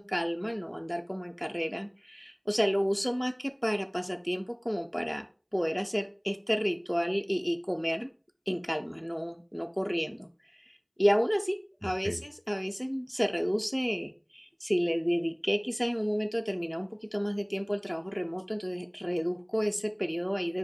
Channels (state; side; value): identical; both; correlation 1.00